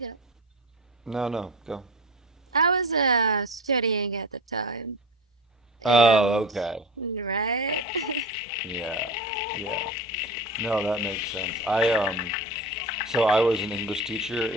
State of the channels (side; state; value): both; normal; correlation 0.29